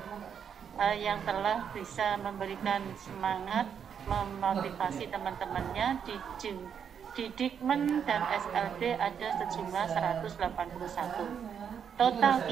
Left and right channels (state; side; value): quieter; left; 7.6 dB